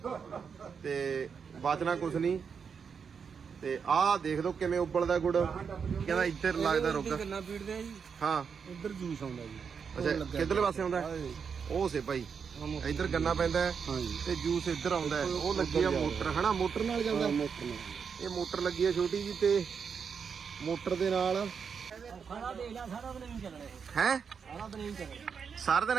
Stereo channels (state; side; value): quieter; left; 6.4 dB